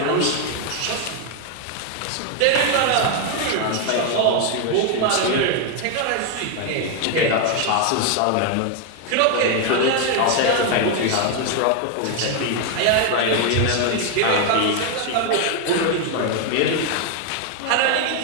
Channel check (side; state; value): both; different; correlation 0.01